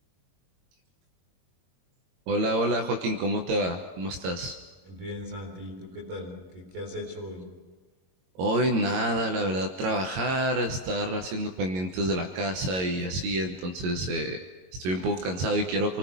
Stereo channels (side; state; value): left; late; 22 ms